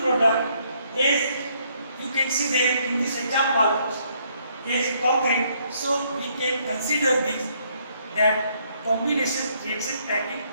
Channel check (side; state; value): both; inverted; correlation -0.69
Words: product, as you can see there in this example is concrete. So we can consider this that combination reaction taking